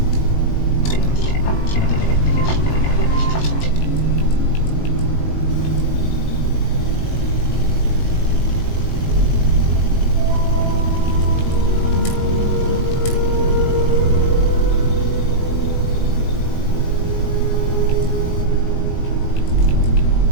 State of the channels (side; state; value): right; late; 19 ms